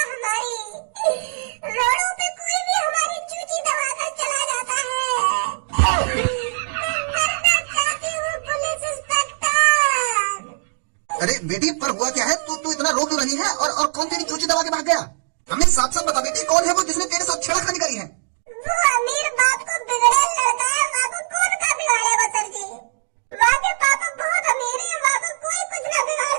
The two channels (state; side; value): silent; left; digital silence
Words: अरे बेटी पर हुआ क्या है? तू इतना रो क्यों रही है और कौन तेरी चूची दबा के भाग गया? हमें साफ साफ बता बेटी, कौन है वो जिसने तेरे साथ छेड़खानी करी है? वो अमीर बाप को बिगड़े लड़का है, वहाँ को कौन का बिगाड़ेगा सर जी? वहाँ के पापा बहुत अमीर है, वहाँ को कोई कुछ ना बिगाड़